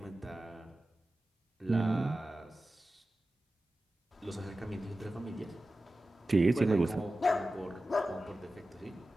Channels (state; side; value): normal; both; correlation 0.94